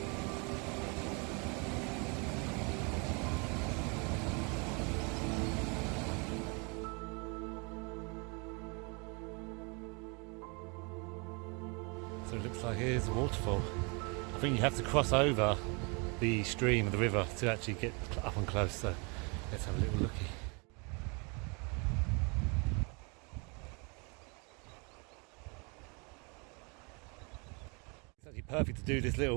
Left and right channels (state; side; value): quieter; left; 32.0 dB